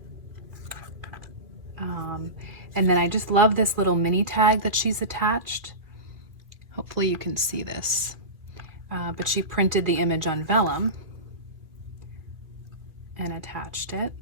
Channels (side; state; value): left; late; 2.4 ms